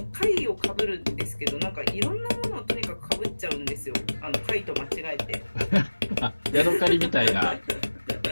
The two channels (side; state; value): both; inverted; correlation -1.00